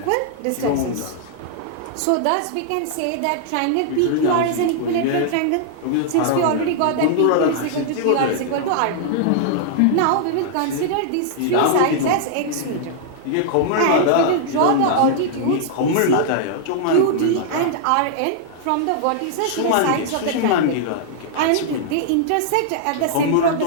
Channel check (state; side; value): different; both; correlation -0.01